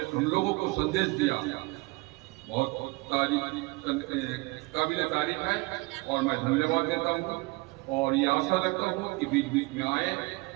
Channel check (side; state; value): left; quieter; 25.2 dB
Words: लोगों को संदेश दिया, बहुत काबिल तारीफ है। और मैं धन्यवाद देता हूँ और ये आशा रखता हूँ कि बीच बीच में आए